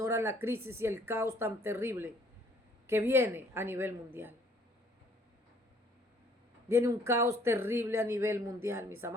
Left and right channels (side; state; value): both; normal; correlation 0.61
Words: la crisis y el caos tan terrible que viene a nivel mundial. Viene un caos terrible a nivel mundial, mis